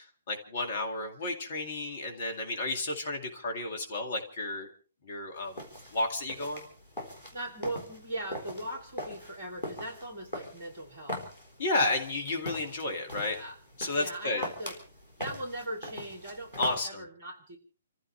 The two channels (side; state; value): both; inverted; correlation -0.58